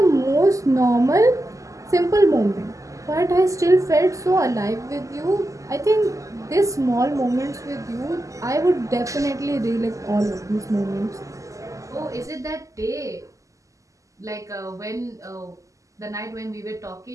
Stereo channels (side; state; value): left; late; 0.16 ms